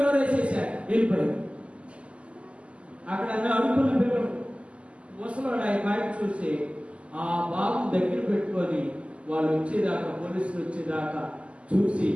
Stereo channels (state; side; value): late; left; 0.058 ms